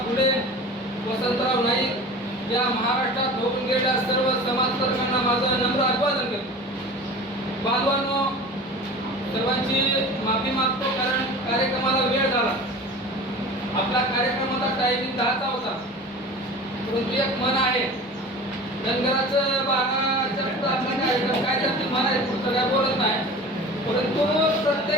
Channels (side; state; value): both; normal; correlation 0.38